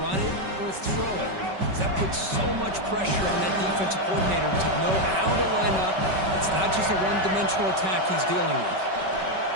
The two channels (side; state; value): left; late; 5.2 ms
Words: run it or throw it. That puts so much pressure on that defensive coordinator to know how to line up. It's not just a one-dimensional attack he's dealing with.